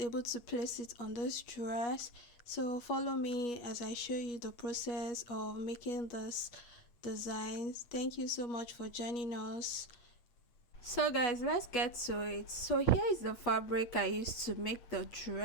to place it on this dress. So follow me as I show you the process of making this designs. Thank you so much for joining us. So guys, let's get to it. So here is the fabric I used to make the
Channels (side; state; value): right; late; 8.7 ms